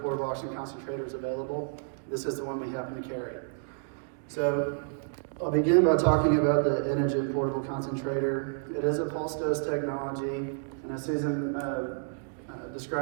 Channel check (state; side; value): silent; left; digital silence